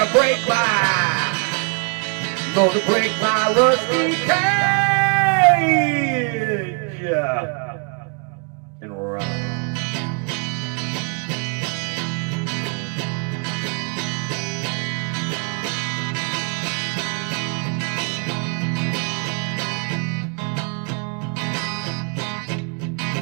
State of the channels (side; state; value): left; quieter; 36.2 dB